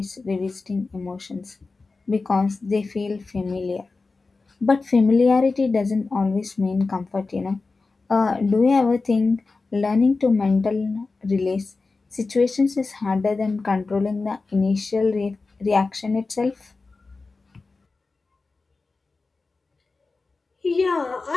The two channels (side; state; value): right; quieter; 3.9 dB